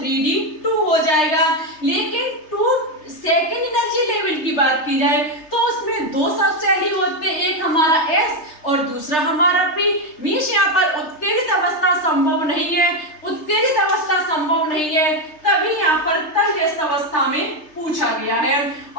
2 हो जाएगा। लेकिन 2 सेकेंड एनर्जी लेवल की बात की जाए तो उसमें दो सब शेल ही होते हैं, एक हमारा S और दूसरा हमारा P। मीन्स यहाँ पर उत्तेजित अवस्था संभव नहीं है, उत्तेजित अवस्था संभव नहीं है, तभी यहाँ पर तलजस्त अवस्था में पूछा गया है।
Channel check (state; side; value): late; right; 3.3 ms